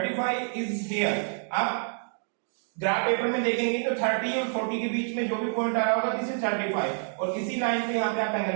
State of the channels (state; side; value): silent; left; 60 dB below the other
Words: इज हियर. आप ग्राफ पेपर में देखेंगे तो 30 और 40 के बीच में जो भी पॉइंट आ रहा होगा दिस इज 35 और किसी लाइन पे यहाँ पे आप